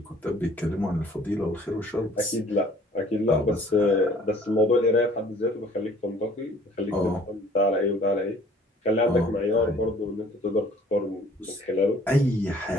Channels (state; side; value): normal; both; correlation 0.54